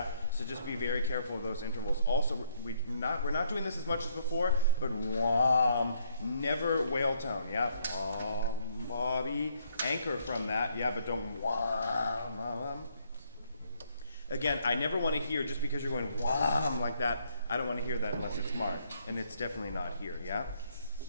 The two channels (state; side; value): inverted; both; correlation -0.70